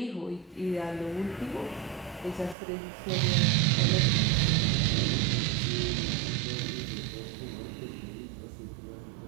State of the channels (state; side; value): drops out; left; at 2.6 s